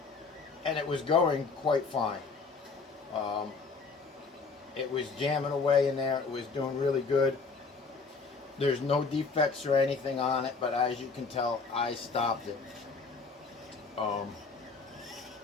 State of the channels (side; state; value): right; quieter; 4.6 dB